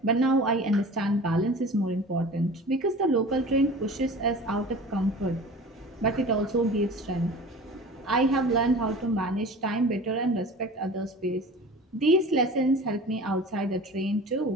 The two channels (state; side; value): normal; both; correlation 0.39